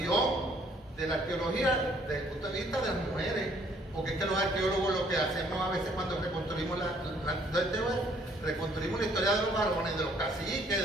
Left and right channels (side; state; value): both; normal; correlation 0.63